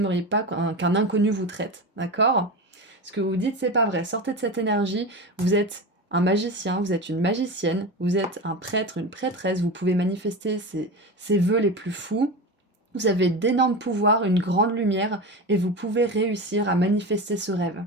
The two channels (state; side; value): normal; both; correlation 0.24